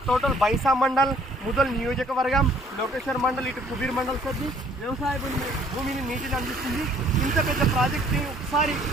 టోటల్ బైన్సా మండల్, ముదల్ నియోజకవర్గం, లోకేశ్వర్ మండల్, ఇటు కుబీర్ మండల్ కొద్ది వ్యవసాయ భూమిని నీటిని అందిస్తుంది. ఇంత పెద్ద ప్రాజెక్ట్ని ఒకసారి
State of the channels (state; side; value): normal; both; correlation 0.59